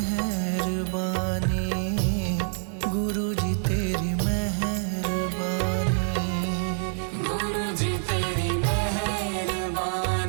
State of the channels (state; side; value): silent; left; 61 dB below the other